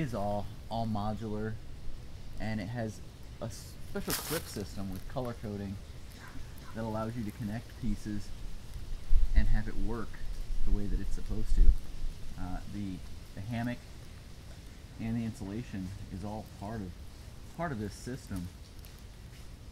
all modular, and it has a special clip system with color coding that allows you to connect pieces and have it work the way that it's supposed to. The hammock and the insulation is all part of this system.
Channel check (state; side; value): identical; both; correlation 1.00